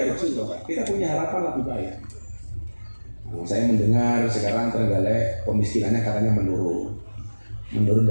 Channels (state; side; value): inverted; both; correlation -1.00